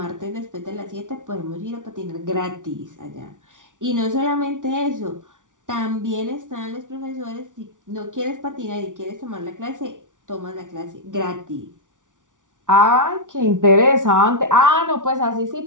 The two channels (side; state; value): left; late; 0.87 ms